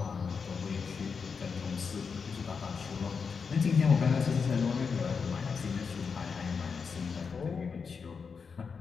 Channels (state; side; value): quieter; right; 5.6 dB